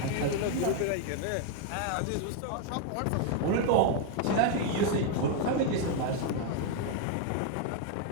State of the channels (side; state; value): both; different; correlation 0.00